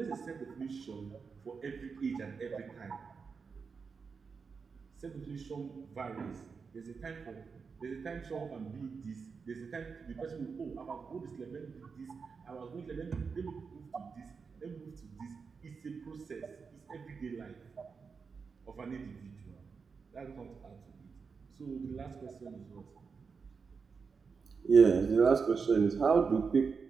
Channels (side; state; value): left; quieter; 5.3 dB